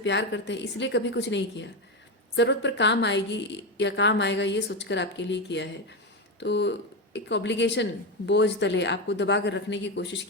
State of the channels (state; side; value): normal; both; correlation 0.13